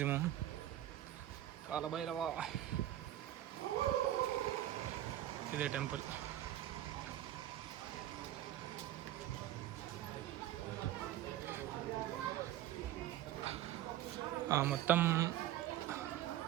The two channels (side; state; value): left; quieter; 13.0 dB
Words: కాలభైరవ ఇదే టెంపుల్. మొత్తం